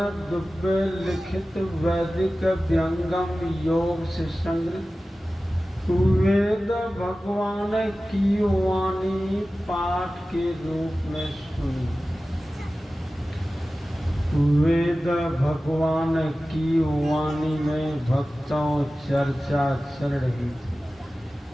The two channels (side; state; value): both; normal; correlation 0.96